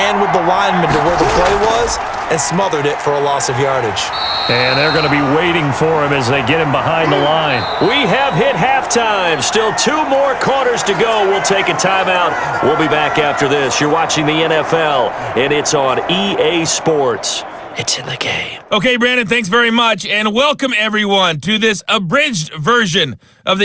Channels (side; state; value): both; identical; correlation 1.00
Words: with the lineman to where the play was and smothered it for a loss of yardage. And they're going to be waiting for him as they get him behind the line. We have hit halftime. Still 2 more quarters to go. We'll take a timeout. We'll be back after this. You're watching the NFL, and it's on EA Sports. It's in the game. Okay, Brandon, thanks very much, and welcome everyone to this abridged version of